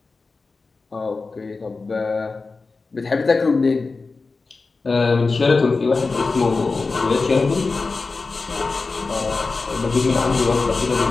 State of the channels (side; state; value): right; quieter; 4.0 dB